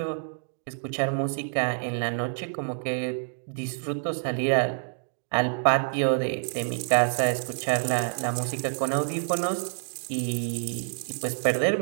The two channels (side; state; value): left; silent; digital silence